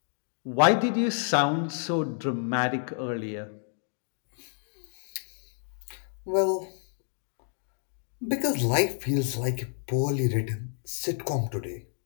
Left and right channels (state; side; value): silent; right; 58 dB below the other